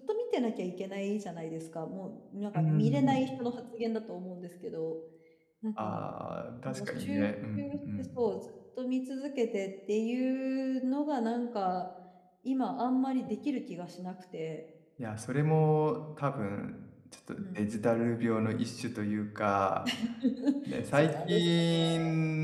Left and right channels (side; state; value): both; identical; correlation 1.00